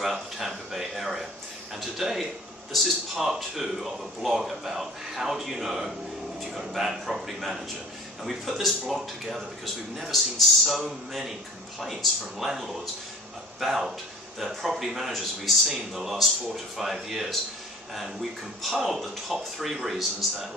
the Tampa Bay area. And today, this is part 2 of a blog about how do you know if you've got a bad property manager. And we put this blog together because we've never seen so many complaints from landlords about their property managers we've seen the last 4 to 5 years. And we compiled the top 3 reasons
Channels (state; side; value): normal; both; correlation 0.46